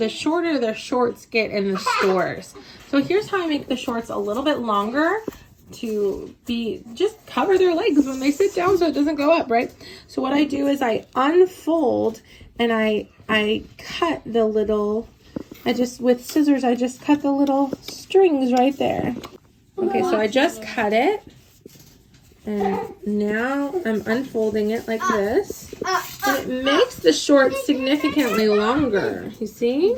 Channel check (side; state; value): both; identical; correlation 1.00